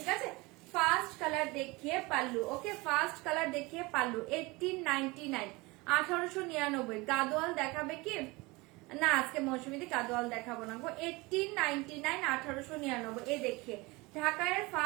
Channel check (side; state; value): left; quieter; 24.0 dB